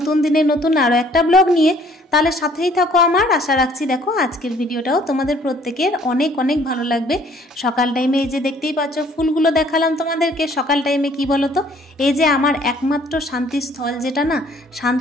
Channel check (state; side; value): normal; both; correlation 0.59